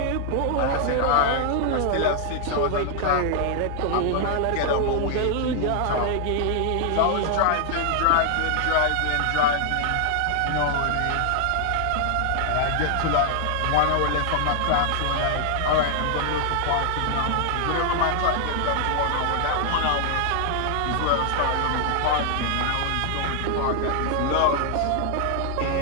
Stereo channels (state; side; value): different; both; correlation 0.00